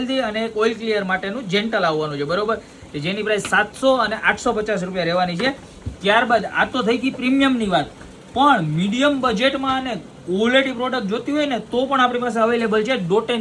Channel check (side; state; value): both; identical; correlation 1.00